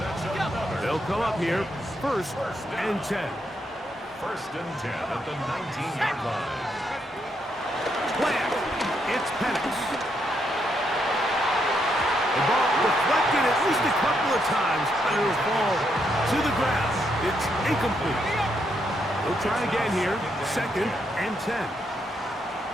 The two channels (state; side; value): normal; both; correlation 0.78